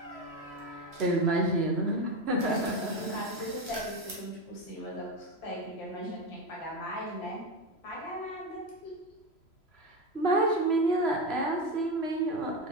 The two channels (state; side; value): late; right; 3.0 ms